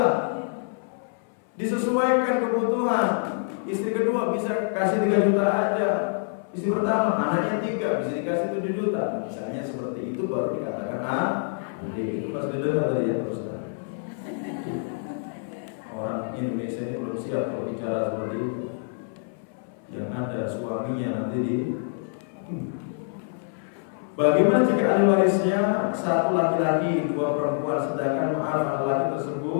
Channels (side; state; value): right; silent; 61 dB below the other